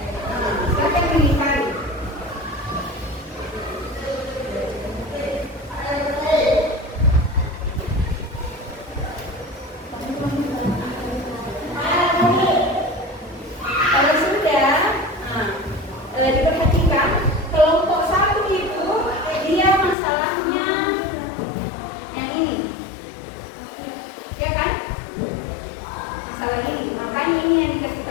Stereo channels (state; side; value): drops out; right; at 20.0 s